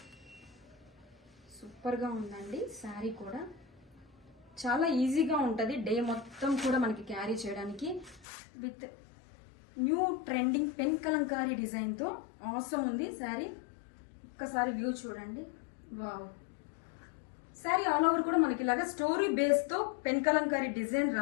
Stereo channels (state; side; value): drops out; right; at 8.2 s